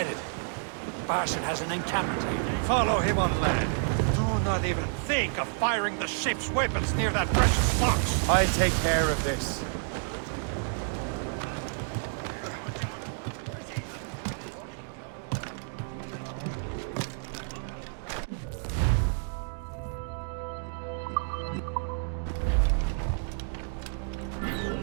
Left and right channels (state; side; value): silent; left; 58 dB below the other